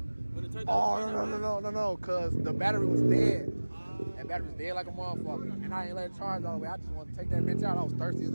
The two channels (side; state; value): both; inverted; correlation -1.00